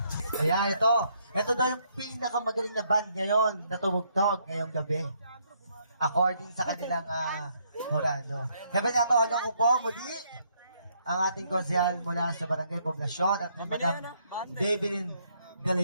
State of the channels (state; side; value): inverted; both; correlation -0.71